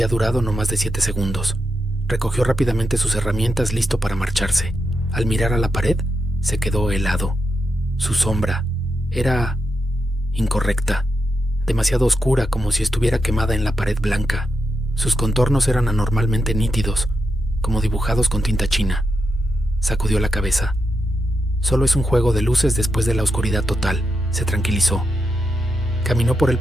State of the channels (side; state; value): both; normal; correlation 0.86